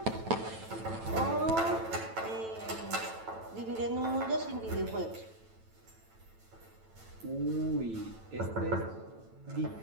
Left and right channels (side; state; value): left; late; 9.0 ms